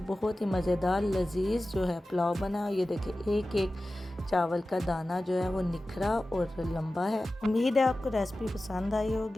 बहुत ही मज़ेदार लजीज जो है पुलाव बना। ये देखिए एक एक चावल का दाना जो है वो निखरा और लंबा है। उम्मीद है आपको रेसिपी पसंद आई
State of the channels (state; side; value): normal; both; correlation 0.95